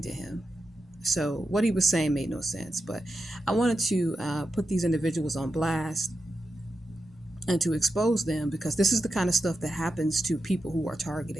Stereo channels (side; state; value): both; normal; correlation 0.88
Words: to him. So what he was saying made no sense. But I wanted to put these individuals on blast and to expose them, because this is the kind of stuff that happens to people who are